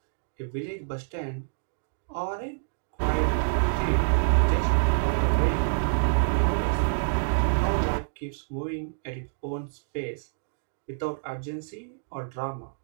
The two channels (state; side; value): silent; left; digital silence